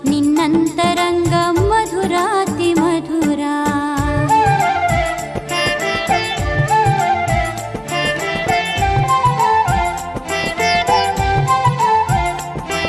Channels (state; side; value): identical; both; correlation 1.00